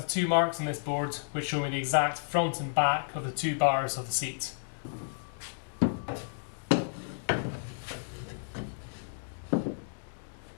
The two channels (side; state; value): right; silent; digital silence